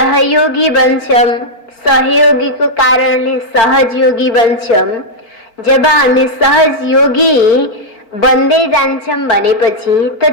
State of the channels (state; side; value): late; right; 4.5 ms